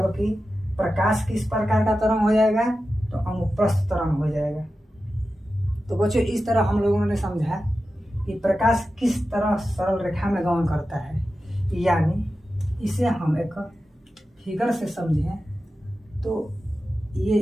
प्रकाश किस प्रकार का तरंग हो जाएगा? तो अनुप्रस्थ तरंग हो जाएगा। तो बच्चों, इस तरह हम लोगों ने समझा कि प्रकाश किस तरह सरल रेखा में गमन करता है। यानी इसे हम एक फिगर से समझें तो ये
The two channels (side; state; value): both; normal; correlation 0.92